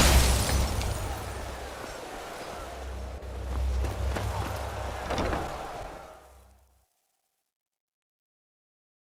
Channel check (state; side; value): identical; both; correlation 1.00